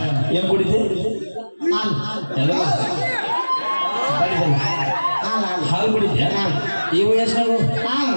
ಏನು ಕುಡಿತಿ ಹಾಲು ಕುಡಿದ್ಯಾ ಈ ವಯಸ್ಸಿನಾಗು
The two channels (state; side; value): inverted; both; correlation -1.00